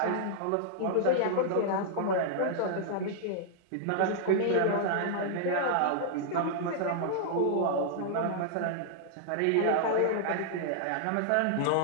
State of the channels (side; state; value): both; different; correlation -0.01